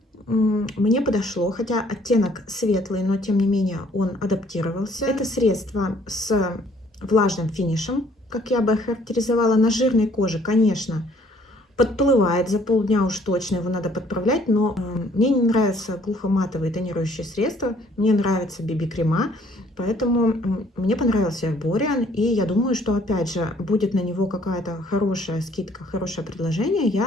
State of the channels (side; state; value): both; normal; correlation 0.61